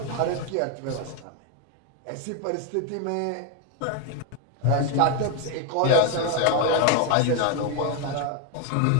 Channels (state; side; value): different; both; correlation 0.01